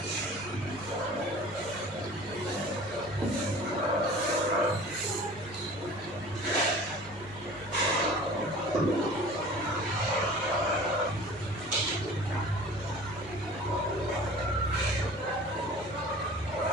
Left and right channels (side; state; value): both; normal; correlation 0.43